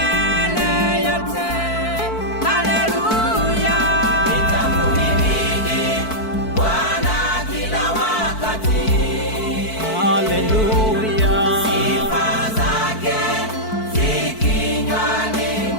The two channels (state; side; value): late; right; 4.5 ms